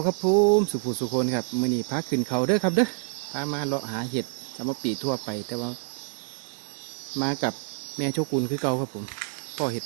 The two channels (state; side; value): silent; left; digital silence